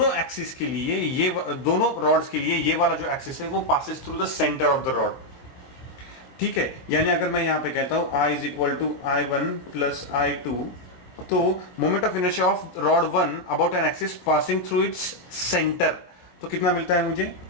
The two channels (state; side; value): late; right; 23 ms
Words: एक्सिस के लिए, ये दोनों रॉड्स के लिए ये वाला जो एक्सिस है वो passes through the centre of the rod, ठीक है। यानी अगर मैं यहां पे कहता हूं I is equal to I1 plus I2, तो moment of inertia of rod 1 about an axis passing through its centre, तो कितना मिलता है मुझे,